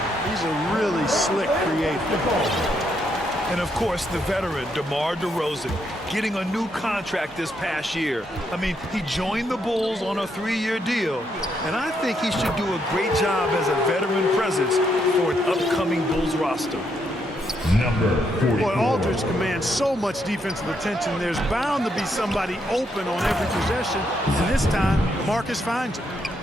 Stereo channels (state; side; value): normal; both; correlation 0.76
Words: He's a really slick creator. And, of course, the veteran, DeMar DeRozan, getting a new contract this past year. I mean, he joined the Bulls on a 3-year deal, and I think he should do a great job as a veteran presence for an upcoming Bulls roster. Number 44. Boy, Aldridge commands so much defensive attention. There's bound to be somebody open on every possession, and this time, Marcus finds it.